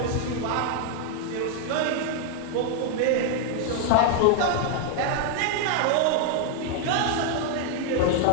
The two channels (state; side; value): different; both; correlation 0.00